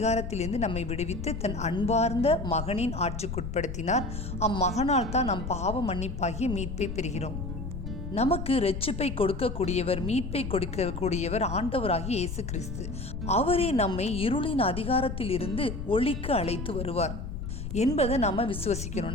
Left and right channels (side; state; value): left; noise; rumble, 6 dB below the sound